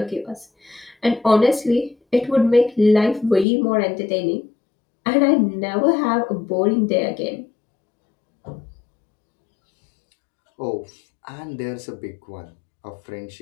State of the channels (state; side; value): drops out; right; at 3.5 s